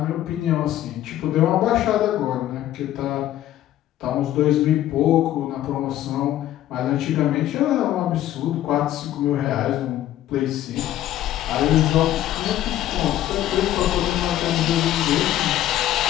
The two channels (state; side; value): quieter; right; 13.0 dB